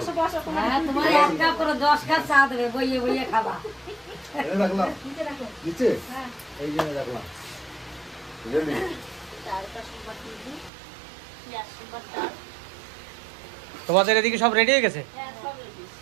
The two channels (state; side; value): drops out; left; at 10.7 s